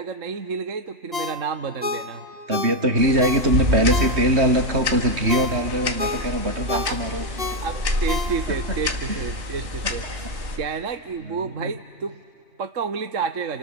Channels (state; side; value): late; left; 2.7 ms